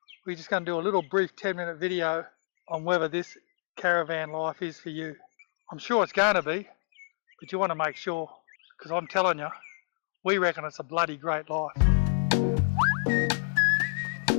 we're just going to do a little brief 10-minute video on whether this caravan life is for you. I'm sure it's going to be, but you want to make sure, because I'm telling you, we reckon it's a bloody great life.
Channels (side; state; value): right; silent; digital silence